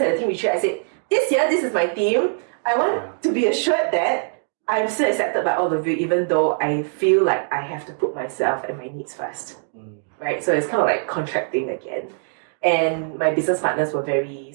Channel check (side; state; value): left; silent; digital silence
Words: a team retreat. I said, this year, this is my team. I want to be assured that I'm still accepted by all of you, even though I feel like I have to put myself and my needs first. Right? So it's kind of like contracting again. And my business partners were very